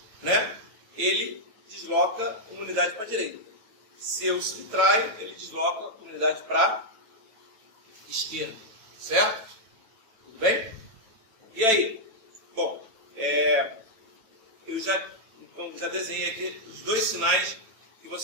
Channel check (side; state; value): left; late; 9.0 ms